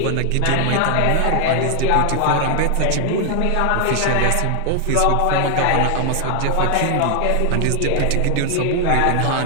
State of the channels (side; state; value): both; different; correlation 0.00